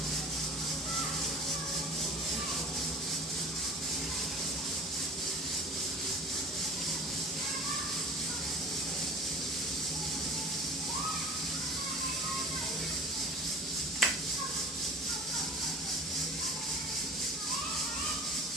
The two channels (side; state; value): both; normal; correlation 0.41